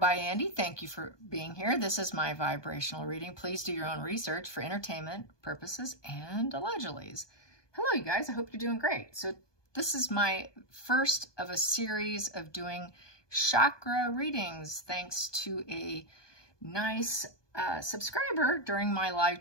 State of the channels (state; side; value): late; right; 1.2 ms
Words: Andy. Thank you for being here. This is my vibrational reading. Please do your own research for entertainment purposes and allegedly. Hello, you guys. I hope you're doing great. So this is my first of a series of doing chakra readings, thanks to a nice subscriber during my live